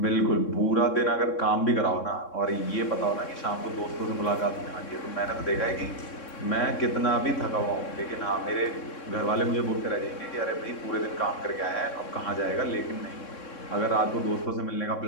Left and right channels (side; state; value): right; late; 3.6 ms